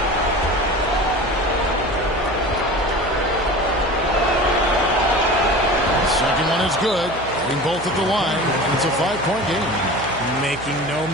The second one is good. Getting both at the line, and it's a 5-point game. Making no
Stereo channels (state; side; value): noise; right; hum, 14 dB below the sound